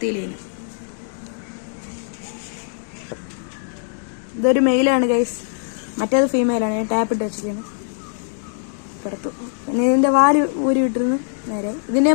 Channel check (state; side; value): silent; right; digital silence